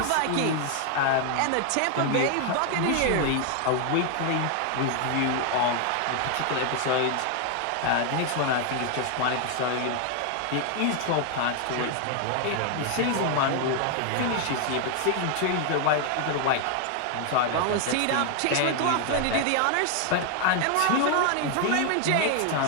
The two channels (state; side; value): different; both; correlation 0.00